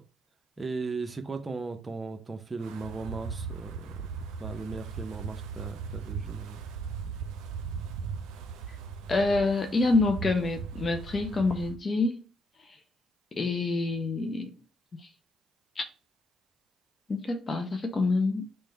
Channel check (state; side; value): normal; both; correlation 0.74